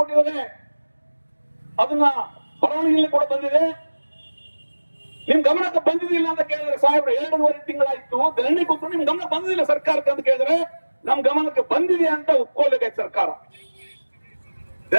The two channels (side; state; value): both; inverted; correlation -1.00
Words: ಅದನ್ನ ಬರವಣಿಗೆಯಲ್ಲಿ ಕೂಡ ಬಂದಿದೆ. ನಿಮ್ ಗಮನಕ್ಕೆ ಬಂದಿದ್ದಿಲ್ಲ ಅಂತ ಕೇಳಿದ್ರೆ ಸಾಹೇಬ್ರು 2.5 ತಿಂಗಳಾಯ್ತು ಧರಣಿ ಕೊಟ್ಟು ನಿಮ್ ಗಮನ ಬಂದಿಲ್ಲ ಸರ್ಕಾರಕ್ಕೆ ಅಂತ ಕೇಳಿದ್ರೆ ನಮ್ ಗಮನಕ್ಕೆ ಬಂದಿದೆ ಅಂತ ಒಪ್ಕೊಳ್ಬೇಕಾಯ್ತು ಸರ್ಕಾರ.